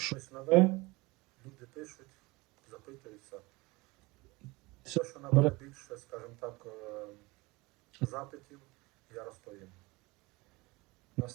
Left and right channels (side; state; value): left; quieter; 23.5 dB